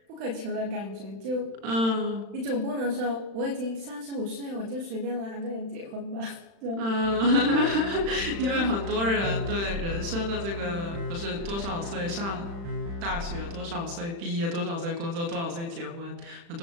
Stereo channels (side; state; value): left; late; 35 ms